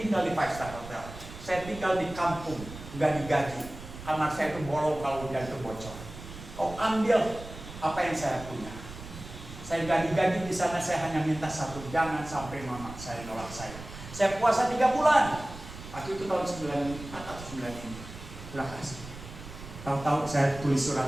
di 5-star hotel. Saya tinggal di kampung, nggak digaji. Kamar saya itu bolong kalau hujan itu bocor. Kau ambil apa yang saya punya. Saya nggak digaji di sana, saya hanya minta satu, jangan sampai mama saya nolak saya. Saya puasa 3 bulan. Waktu itu tahun 94 atau 95. Terima kasih. Tahu-tahu saya tulis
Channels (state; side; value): noise; right; rumble, 13 dB below the sound